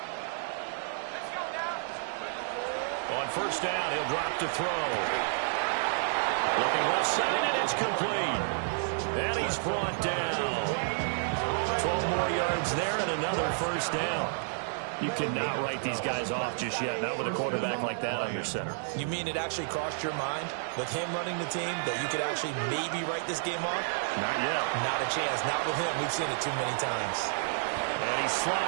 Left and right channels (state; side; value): silent; left; digital silence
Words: On first down, he'll drop to throw. Looking left side, and it's complete. And he's brought down. 12 more yards there and another first down. You cannot write these guys off just yet, not with a quarterback like that on your center. You mean it actually crossed your mind with him running the team that you could actually maybe write this game off? Not yet. Not a chance. Not with him. We've seen it too many times. And he